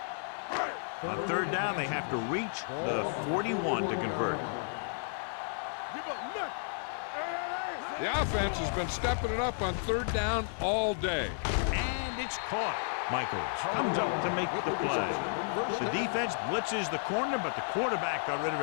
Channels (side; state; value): right; silent; 56 dB below the other